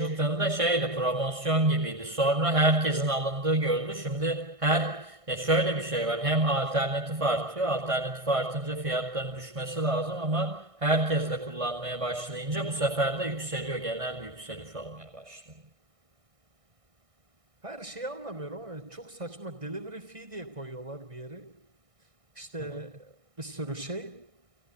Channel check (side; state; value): left; late; 1.6 ms